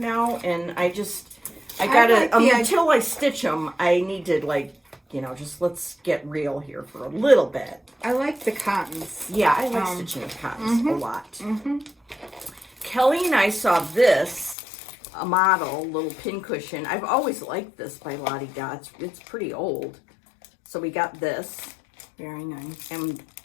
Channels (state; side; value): drops out; right; at 14.6 s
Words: and I gotta, until I stitch them, I need to like, just let's get real here for a little bit. I like the cottons. Yeah, I like stitching with cottons a lot. Kelly and I saw this, a model, little pincushion. I've always liked this by Lottie Dots. It's pretty old. So we got this. Very nice. And